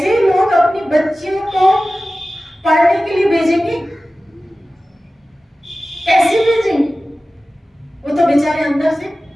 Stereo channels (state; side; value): normal; both; correlation 0.96